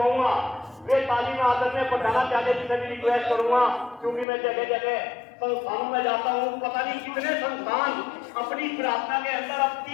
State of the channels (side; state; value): right; drops out; at 4.2 s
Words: वे ताली में आदत में पढ़ाना चाहते जिसे भी रिक्वेस्ट करूंगा, क्योंकि मैं जगह जगह संस्थानों में जाता हूँ, पता नहीं कितने संस्थान अपनी प्रार्थना के अंदर अब